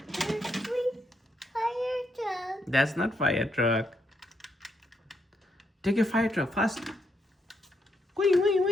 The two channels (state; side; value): normal; both; correlation 0.77